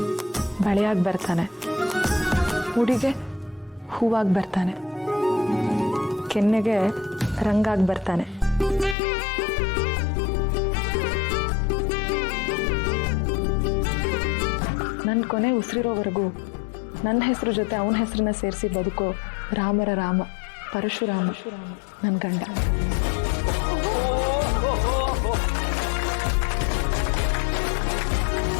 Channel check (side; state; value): right; drops out; at 9.0 s